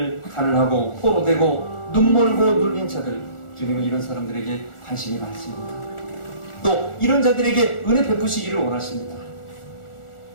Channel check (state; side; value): late; right; 1.4 ms